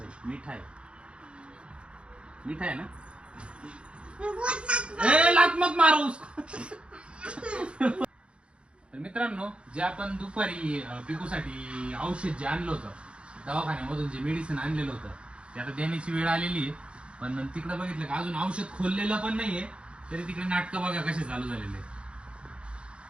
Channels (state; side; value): late; left; 0.058 ms